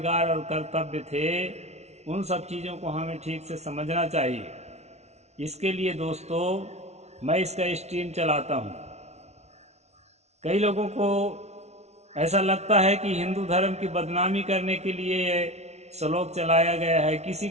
और कर्तव्य थे, उन सब चीज़ों को हमें ठीक से समझना चाहिए। इसके लिए दोस्तों मैं इसका स्ट्रीम चलाता हूँ। कई लोगों को ऐसा लगता है कि हिंदू धर्म की बदनामी करने के लिए श्लोक चलाया गया है।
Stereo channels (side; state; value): left; late; 0.32 ms